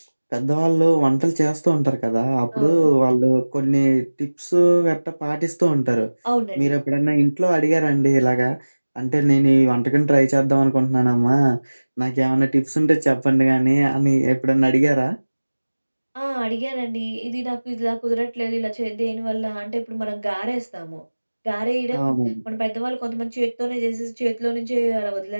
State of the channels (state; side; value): inverted; both; correlation -1.00